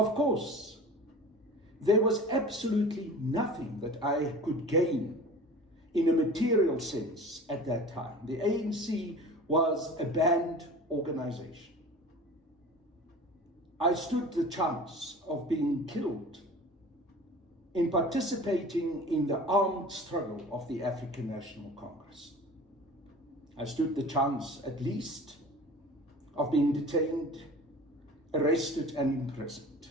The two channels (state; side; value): normal; both; correlation 0.40